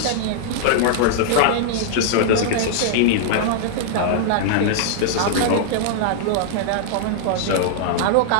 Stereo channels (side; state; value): both; different; correlation -0.01